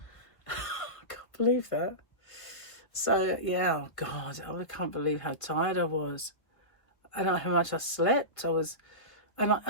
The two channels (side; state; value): right; late; 1.6 ms